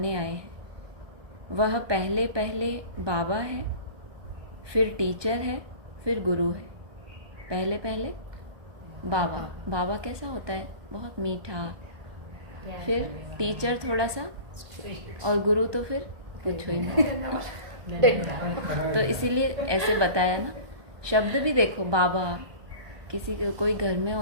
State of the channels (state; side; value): late; left; 1.2 ms